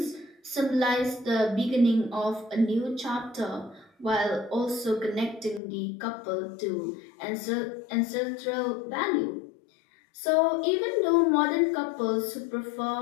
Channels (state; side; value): drops out; right; at 5.6 s